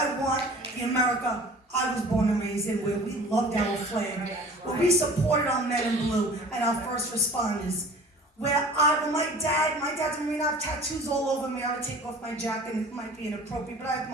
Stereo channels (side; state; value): both; normal; correlation 0.44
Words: want the America I was born and raised in, where we loved our flag, where we supported our men in blue and our first responders. Where my dad's in Marina, I have tattoos all over me. I would take off my jacket, and it might be inappropriate, but I have